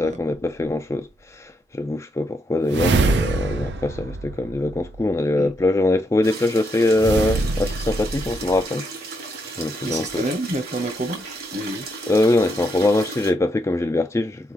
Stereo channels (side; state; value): both; normal; correlation 0.79